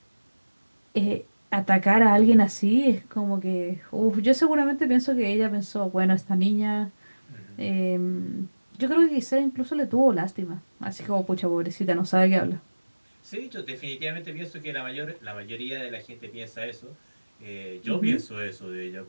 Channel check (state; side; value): inverted; both; correlation -1.00